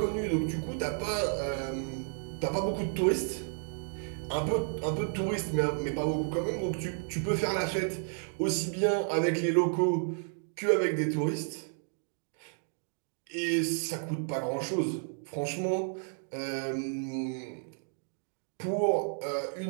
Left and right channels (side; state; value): left; silent; 56 dB below the other